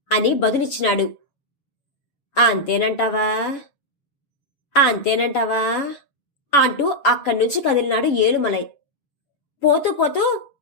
అని బదులిచ్చినాడు. అంతేనంటావా అంటూ అక్కడ్నుంచి కదిలినాడు ఏలుమలై. పోతూ పోతూ,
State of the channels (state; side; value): late; right; 7.1 ms